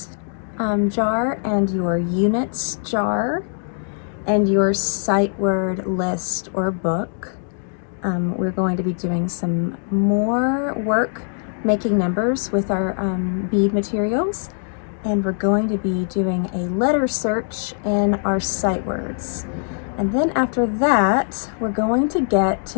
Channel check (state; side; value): silent; right; digital silence